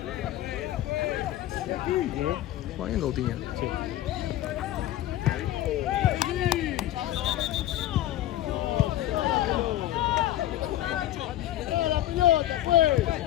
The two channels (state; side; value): quieter; right; 13.9 dB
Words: Juega bien Coutinho. Sí.